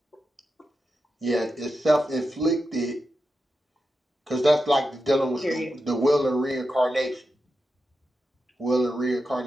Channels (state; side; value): normal; both; correlation 0.89